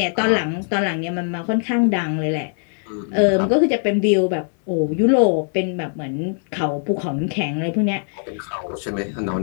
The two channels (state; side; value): silent; right; 65 dB below the other